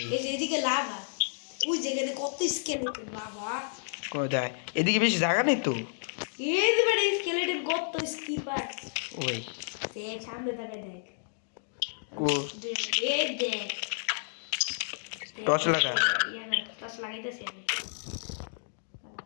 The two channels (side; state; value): right; silent; digital silence